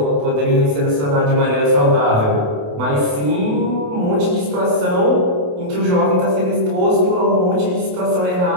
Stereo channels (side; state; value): left; late; 28 ms